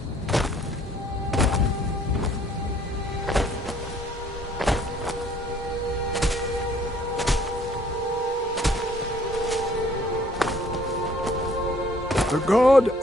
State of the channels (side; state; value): both; normal; correlation 0.60